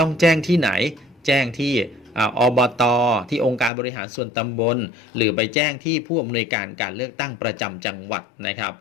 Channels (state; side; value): drops out; right; at 3.7 s